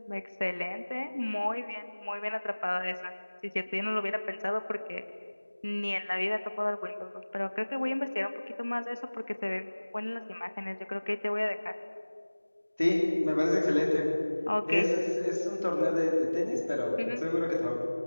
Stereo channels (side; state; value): both; inverted; correlation -1.00